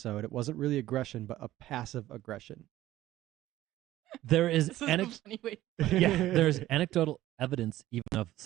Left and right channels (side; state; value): left; quieter; 14.8 dB